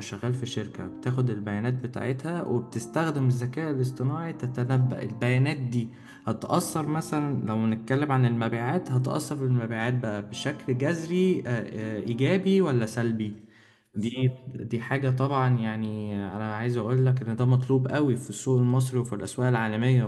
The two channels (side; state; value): both; identical; correlation 1.00